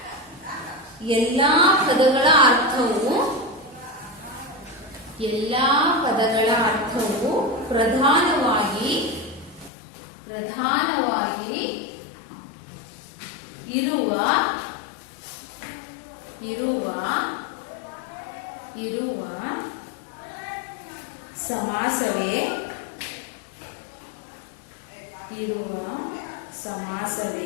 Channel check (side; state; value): right; drops out; at 9.7 s